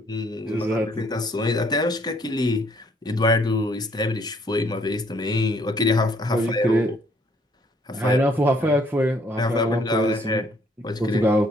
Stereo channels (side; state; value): both; normal; correlation 0.65